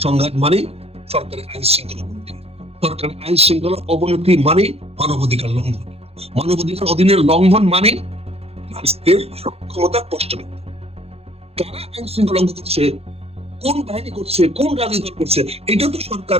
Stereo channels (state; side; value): late; left; 0.29 ms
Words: সংঘাত মানে সরকারের আইন শৃঙ্খলা অবনতি, সরকারের আইন শৃঙ্খলা অবনতি মানে মানবাধিকার লঙ্ঘন, মানবাধিকার অধীনের লঙ্ঘন মানে রাষ্ট্রের সক্ষমতা প্রশ্নবিদ্ধ। কারা আইন শৃঙ্খলা লঙ্ঘন করছে, কোন বাহিনী করছে, কোন রাজনৈতিক দল করছে, এটা তো সরকার